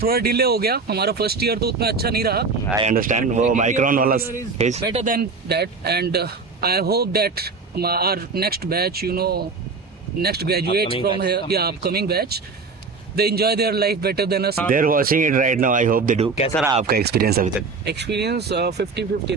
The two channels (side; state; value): left; quieter; 4.4 dB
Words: थोड़ा डिले हो गया। हमारा फर्स्ट ईयर तो उतना अच्छा नहीं रहा। आई अंडरस्टैंड, वो माइक्रोन वाला phase better than that, and I hope that our next batch, you know, next graduate from here, या upcoming batch, they enjoy their life better than us. They're watching it right now, I hope they do. कैसा रहा आपका experience अभी तक? Experience 50-50